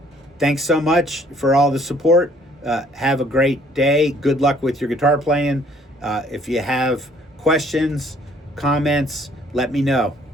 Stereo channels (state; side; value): normal; both; correlation 0.60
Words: Thanks so much for all the support. Have a great day. Good luck with your guitar playing. If you have questions, comments, let me know.